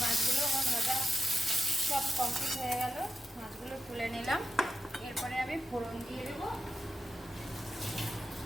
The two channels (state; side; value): normal; both; correlation 0.88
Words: মাছগুলো আমার ভাজা সব কমপ্লিট হয়ে গেল, মাছগুলো তুলে নিলাম। এরপরে আমি ফোড়ন দিয়ে দেবো।